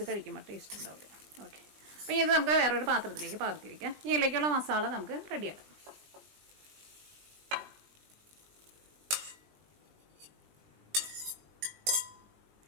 കഴിക്കുമ്പോൾ ടേസ്റ്റ് ഉണ്ടാവില്ല. ഓക്കെ, അപ്പോൾ ഇത് നമുക്ക് വേറൊരു പാത്രത്തിലേക്ക് പകർത്തി വയ്ക്കാം. ഇതിലേക്കുള്ള മസാല നമുക്ക് റെഡിയാക്കാം.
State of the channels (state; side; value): late; left; 20 ms